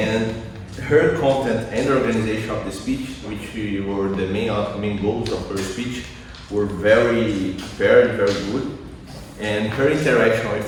her content and the organization of the speech, which were the main goals of her speech, were very prepared, very good. And her interaction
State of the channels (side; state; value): both; identical; correlation 1.00